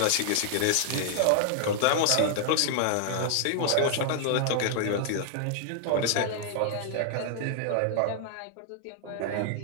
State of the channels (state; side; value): different; both; correlation 0.00